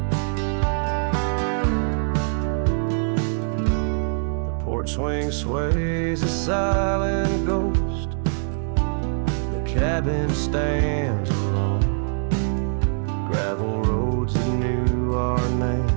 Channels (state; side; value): silent; left; digital silence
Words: The porch swing sways a silent ghost. Cabin stands alone. Gravel roads that knew our